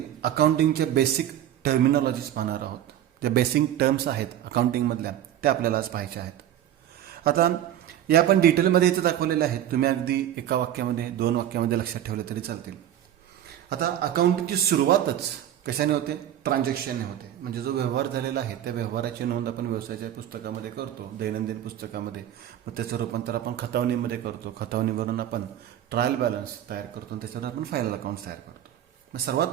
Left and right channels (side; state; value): left; quieter; 11.4 dB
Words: अकाउंटिंगचे बेसिक टर्मिनॉलॉजीज पाहणार आहोत. ज्या बेसिक टर्म्स आहेत अकाउंटिंगमधल्या त्या आपल्याला आज पाहायच्या आहेत. आता या आपण डिटेलमध्ये इथे दाखवलेल्या आहेत. तुम्ही अगदी एका वाक्यामध्ये 2 वाक्यामध्ये लक्षात ठेवले तरी चालतील. आता अकाउंटिंगची सुरुवातच कशाने होते? ट्रान्झॅक्शनने होते. म्हणजे जो व्यवहार झालेला आहे त्या व्यवहाराची नोंद आपण व्यवसायाच्या पुस्तकामध्ये करतो, दैनंदिन पुस्तकामध्ये. मग त्याचं रूपांतर आपण खतावणीमध्ये करतो. खतावणीवरून आपण ट्रायल बॅलन्स तयार करतो आणि त्याच्यावर आपण फायनल अकाउंट तयार करतो. मग सर्वात